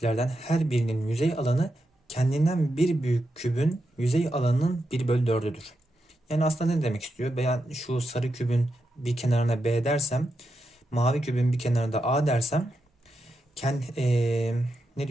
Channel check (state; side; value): normal; both; correlation 0.86